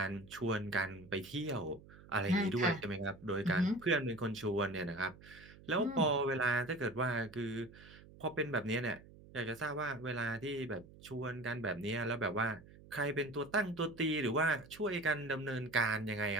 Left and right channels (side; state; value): right; noise; hum, 20 dB below the sound